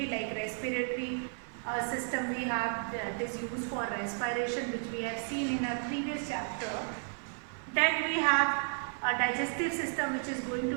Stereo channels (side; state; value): left; silent; 56 dB below the other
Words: like respiratory system we have that is used for respiration, which we have seen in our previous chapter. Then we have a digestive system which is going